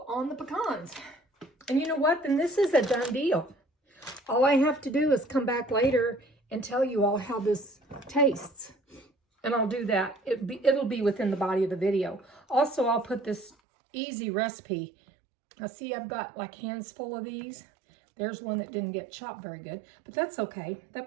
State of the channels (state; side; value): drops out; left; at 13.6 s